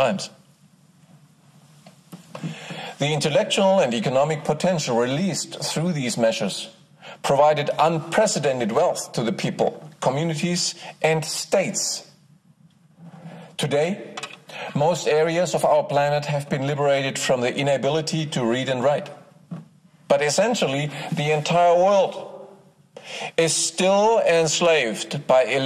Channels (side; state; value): both; identical; correlation 1.00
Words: The intellectual and economic potential released through these measures provided unprecedented wealth to the people, communities, and states. Today, most areas of our planet have been liberated from the inability to read and write. But essentially, the entire world is still enslaved by